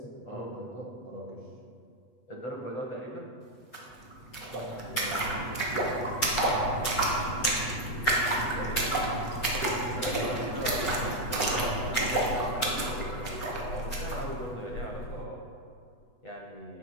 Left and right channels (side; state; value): right; late; 8.1 ms